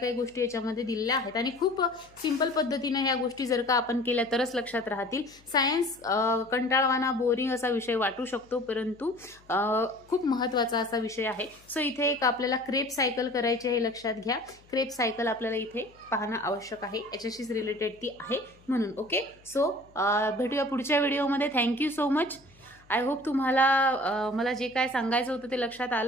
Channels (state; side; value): noise; left; hum, 28 dB below the sound